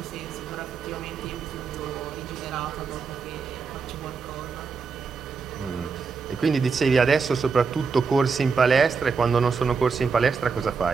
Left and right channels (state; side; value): quieter; left; 5.2 dB